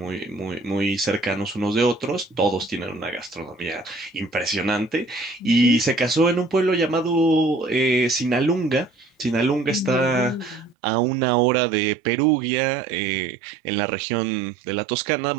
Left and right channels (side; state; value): left; drops out; at 10.8 s